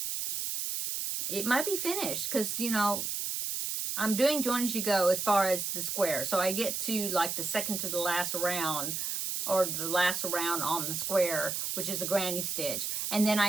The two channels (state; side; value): noise; right; hiss, 2 dB below the sound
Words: it might be finished because, you know, I'm doing join as you go as far as the square. So I get to like the second to the last round, or the last round on the square, which is a granny stitch, and then